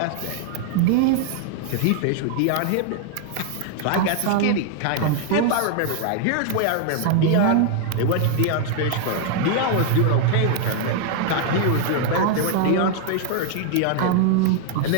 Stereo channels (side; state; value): both; different; correlation 0.00